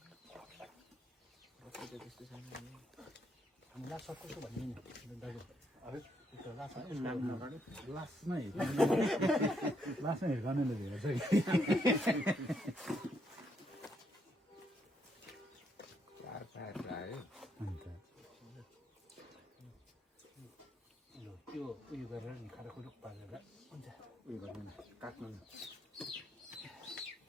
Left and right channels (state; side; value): normal; both; correlation 0.75